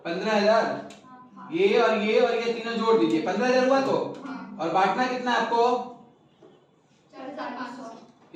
15,000। ये और ये और ये तीनों जोड़ दीजिए, 15,000 हुआ तो। और बांटना कितना है आपको?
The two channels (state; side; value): identical; both; correlation 1.00